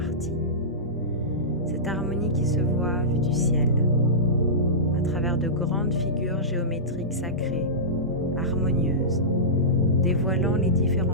Cette harmonie qui se voit vue du ciel, à travers de grandes figures géométriques sacrées, harmonieuses, dévoilant les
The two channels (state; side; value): normal; both; correlation -0.17